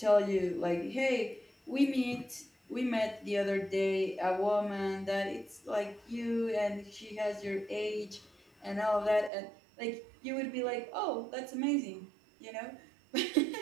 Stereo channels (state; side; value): drops out; left; at 9.3 s